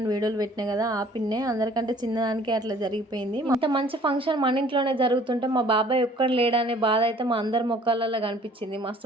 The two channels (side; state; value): both; normal; correlation 0.54